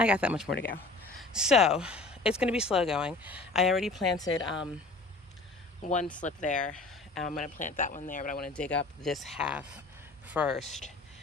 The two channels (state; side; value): quieter; right; 3.3 dB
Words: I got that much more to go. So it's going to be slow going. I already planted one slip there. I'm going to plant that one there, but I want to dig up this half first,